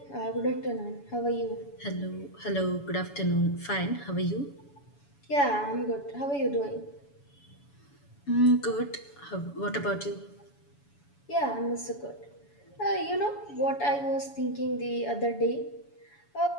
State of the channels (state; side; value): late; right; 7.0 ms